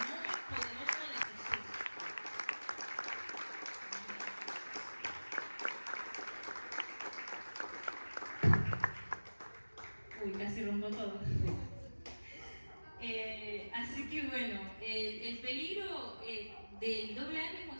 nombre poderoso de Jesús. Uy, casi rompo todo. Así que bueno, el peligro del doble ánimo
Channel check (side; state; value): both; inverted; correlation -1.00